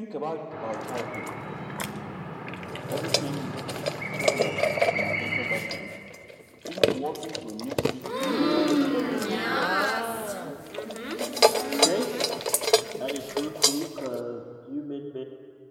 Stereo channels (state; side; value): identical; both; correlation 1.00